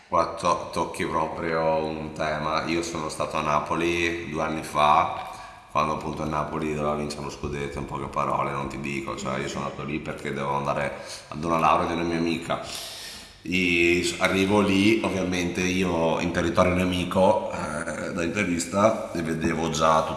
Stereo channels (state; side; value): identical; both; correlation 1.00